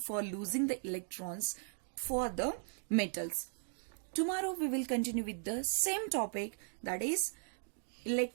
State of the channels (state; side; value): silent; left; 53 dB below the other